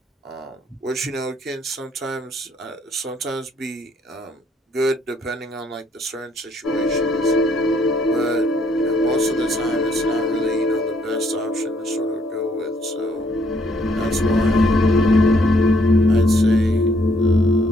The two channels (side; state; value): both; normal; correlation 0.68